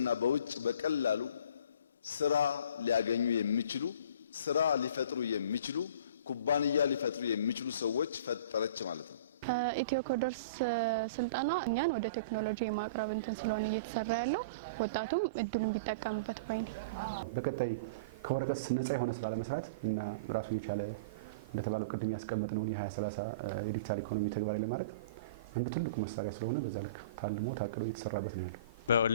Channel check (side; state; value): both; inverted; correlation -0.39